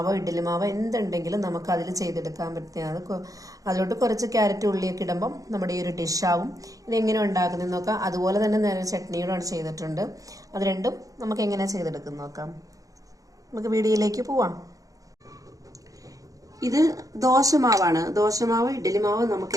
ഇഡ്ഡലി മാവോ എന്തുണ്ടെങ്കിലും നമുക്ക് അതിൽ ചെയ്തെടുക്കാൻ പറ്റുന്നതാണ്. അതിലോട്ട് കുറച്ച് ക്യാരറ്റ് ഉള്ളിയൊക്കെ ഇടുമ്പം നമ്മുടെ ഈ ഒരു ഡിഷാവും. ഇതെങ്ങനെ ഉണ്ടാക്കുന്നതെന്ന് നോക്കാം. അതുപോലെ തന്നെ നേരെ ചട്നിയോടാണ് ചെയ്തിട്ടുണ്ട്. അത് രണ്ടും നമുക്ക് എങ്ങനെ ചെയ്തെടുക്കും നോക്കാം. നമുക്ക് വീഡിയോയിലേക്ക് പോവാം. ഇത് ദോശമാവാണ്. ദോശമാവ് ഇഡ്ഡലി മാവ് നമുക്ക്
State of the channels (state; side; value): late; left; 0.17 ms